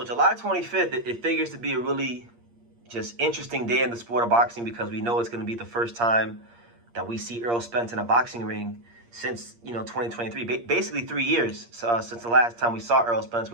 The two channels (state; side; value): late; left; 8.6 ms